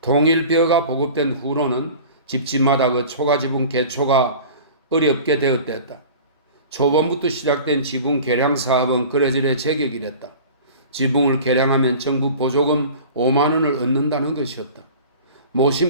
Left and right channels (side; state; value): both; inverted; correlation -0.40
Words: 보급된 후로는 집집마다 그 초가지붕 개초가 어렵게 되었댔다. 초반부터 시작된 지붕 개량 사업은 그래저래 제격이랬다. 지붕을 개량하면 정부 보조금 5만 원을 얻는다는 것이었다.